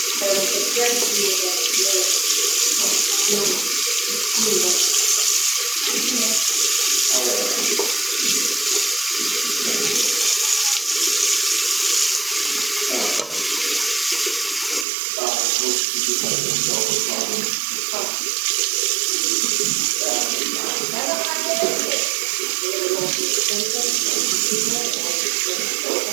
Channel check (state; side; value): drops out; left; at 14.9 s